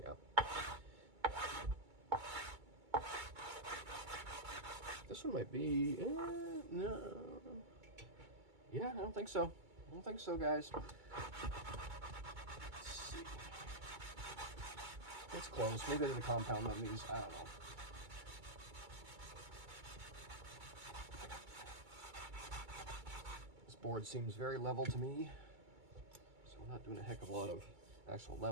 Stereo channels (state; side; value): late; left; 2.2 ms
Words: Yeah. This one might be, no. Yeah, I don't think so. I don't think so, guys. Let's see. It's close. Maybe there's a compound on these. I don't know. This board seems very level to me. So we're not doing a heck of a lot of actual